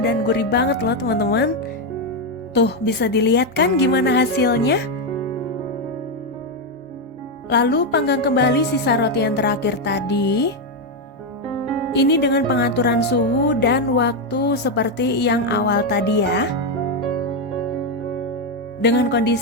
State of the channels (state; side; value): normal; both; correlation 0.05